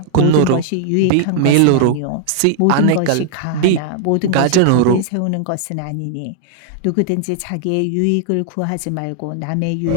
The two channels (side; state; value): both; different; correlation -0.01